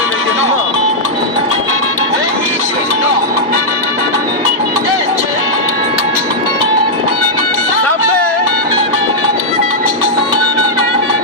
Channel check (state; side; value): normal; both; correlation -0.07